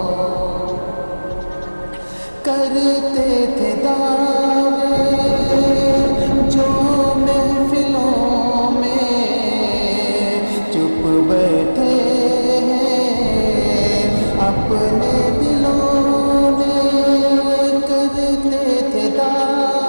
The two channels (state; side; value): inverted; both; correlation -1.00